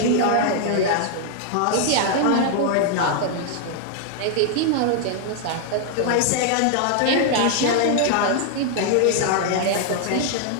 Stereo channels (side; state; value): both; different; correlation 0.00